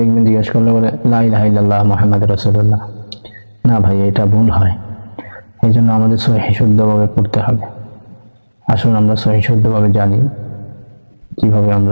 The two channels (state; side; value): inverted; both; correlation -1.00